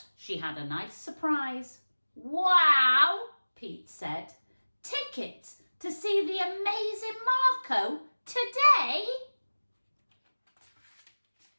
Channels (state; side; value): inverted; both; correlation -1.00